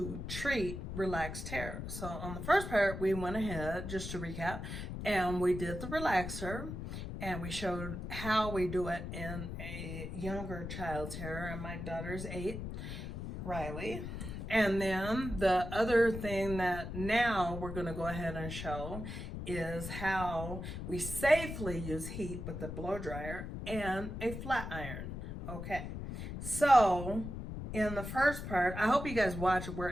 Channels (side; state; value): left; noise; rumble, 7 dB below the sound